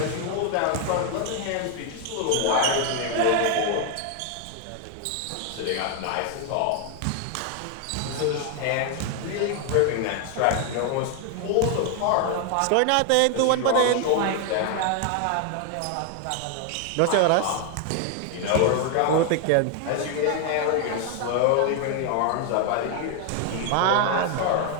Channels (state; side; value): different; both; correlation 0.01